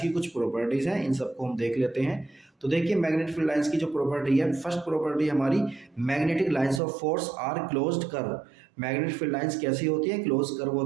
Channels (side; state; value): left; drops out; at 6.8 s